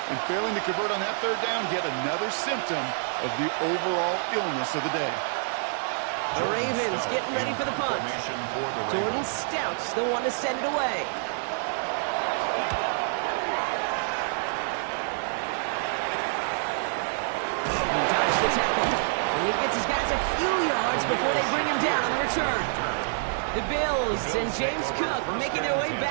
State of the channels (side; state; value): left; silent; 57 dB below the other